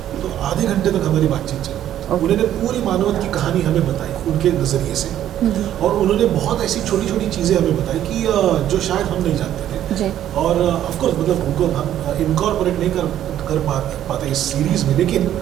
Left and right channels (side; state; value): left; quieter; 11.5 dB